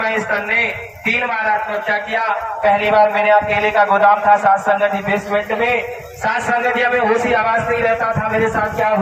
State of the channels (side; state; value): both; identical; correlation 1.00